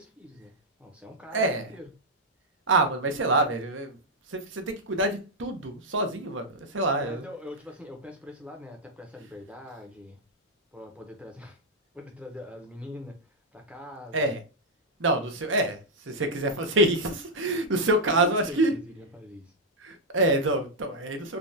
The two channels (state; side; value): normal; both; correlation -0.02